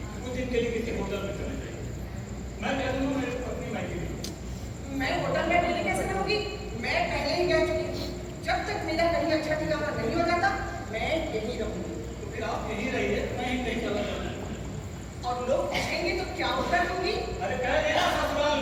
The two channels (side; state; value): both; identical; correlation 1.00